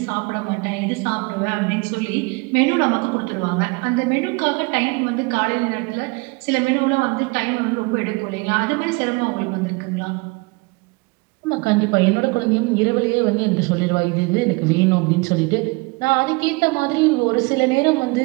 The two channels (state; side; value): quieter; left; 27.5 dB